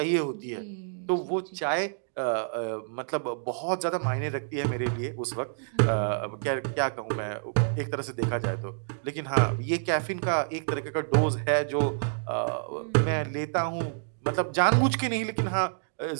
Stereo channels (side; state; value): left; silent; digital silence